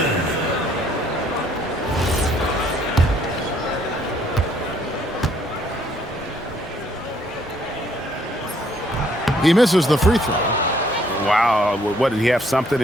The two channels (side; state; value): both; normal; correlation 0.65